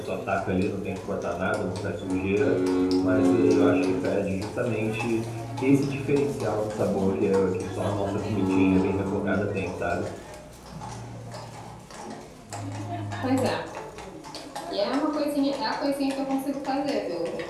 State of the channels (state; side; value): identical; both; correlation 1.00